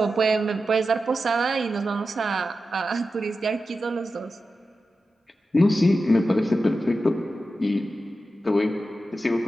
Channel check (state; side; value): normal; both; correlation 0.92